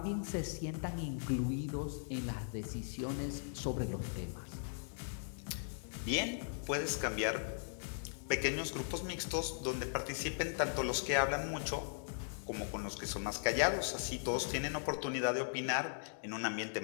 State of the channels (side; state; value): right; silent; digital silence